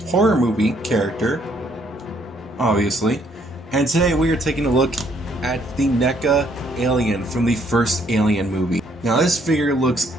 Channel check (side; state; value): both; normal; correlation 0.68